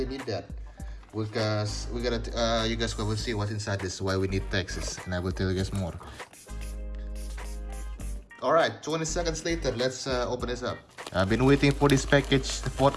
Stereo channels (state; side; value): identical; both; correlation 1.00